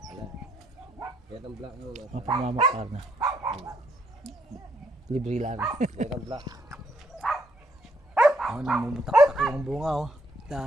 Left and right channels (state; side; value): normal; both; correlation 0.72